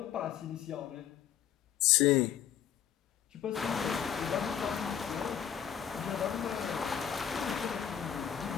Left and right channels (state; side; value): quieter; right; 9.2 dB